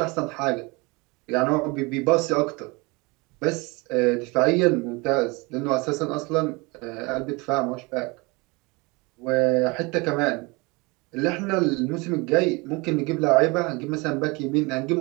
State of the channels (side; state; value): left; quieter; 26.4 dB